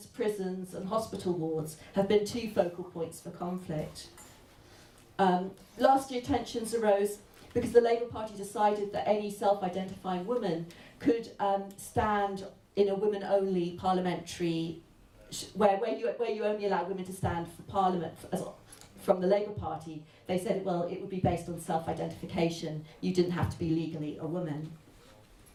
prisons and hospital wards have been two focal points for conflict. Last year tensions arose because the Labour Party decided that any self-identifying woman could stand in a women-only parliamentary, where you only allow women to stand for Parliament from the Labour Party. They said, well, it would be based on self-identification. You didn't have to be legally a woman.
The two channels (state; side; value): identical; both; correlation 1.00